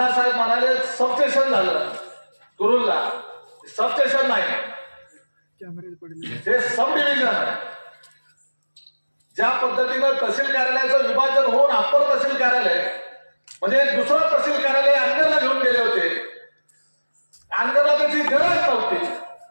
म्हणाले सबस्टेशन झालं कुरुलला. सबस्टेशन नाही, हे सब डिव्हिजन आहे. ज्या पद्धतीनं तहसील कार्यालयाचं विभाजन होऊन अप्पर तहसील कार्यालय म्हणजे दुसरं तहसील कार्यालय अंगरला घेऊन गेले होते, अंगरला त्याची गरज नव्हती.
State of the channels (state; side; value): inverted; both; correlation -1.00